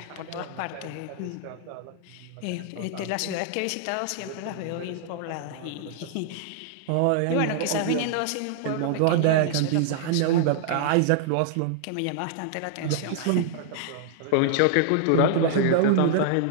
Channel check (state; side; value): different; both; correlation -0.01